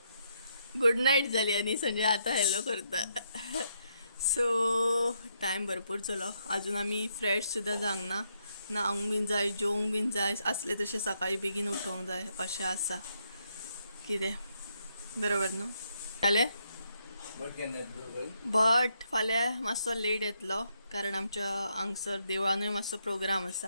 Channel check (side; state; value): both; inverted; correlation -0.76